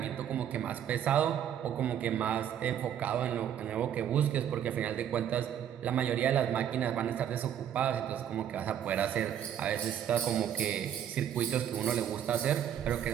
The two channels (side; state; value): left; quieter; 9.7 dB